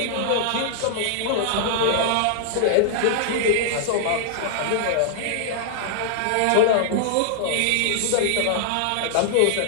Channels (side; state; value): both; different; correlation -0.01